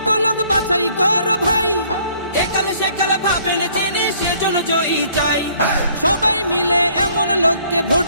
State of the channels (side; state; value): both; inverted; correlation -0.61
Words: লোক বাছাই করো ভাই, একাল সেকাল ভাবেন জেনে সেজন্য জয়ী চাই। সবাই মিলে এমন লোককে ভোট